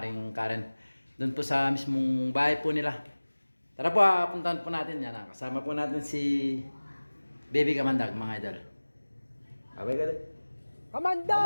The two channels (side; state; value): both; inverted; correlation -1.00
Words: Karen. Doon po sa mismong bahay po nila. Tara po, puntahan po natin yan. Kasama po natin si Baby Kamandag mga idol. Abay ka rin.